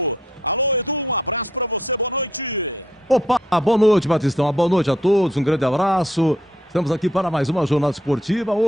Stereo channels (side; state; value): both; normal; correlation 0.70